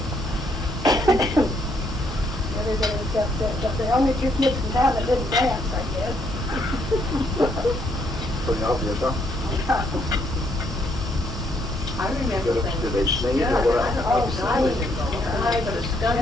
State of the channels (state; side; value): normal; both; correlation 0.71